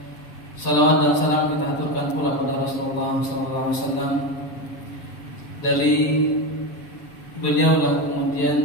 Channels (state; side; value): late; right; 6.9 ms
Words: salawat dan salam kita aturkan pula kepada Rasulullah SAW. Dari beliaulah